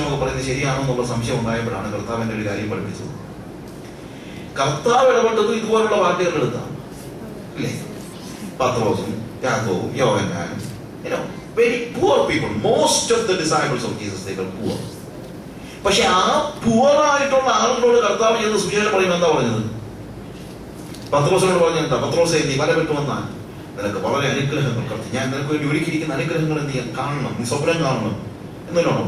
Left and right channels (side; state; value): both; identical; correlation 1.00